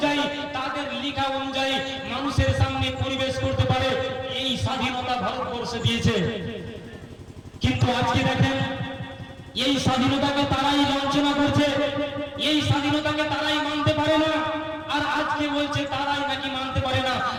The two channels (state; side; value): identical; both; correlation 1.00